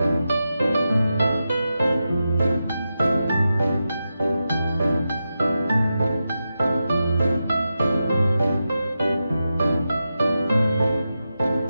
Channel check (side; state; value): both; inverted; correlation -0.90